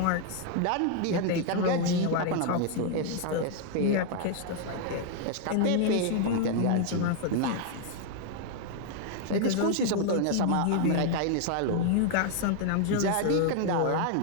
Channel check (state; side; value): different; both; correlation 0.00